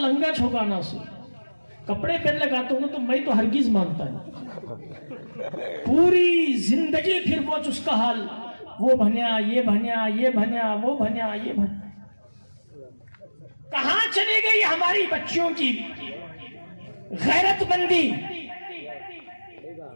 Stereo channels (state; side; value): inverted; both; correlation -1.00